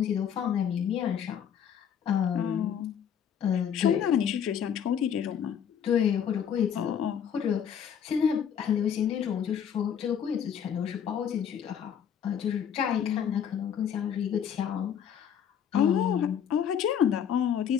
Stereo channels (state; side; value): quieter; right; 8.4 dB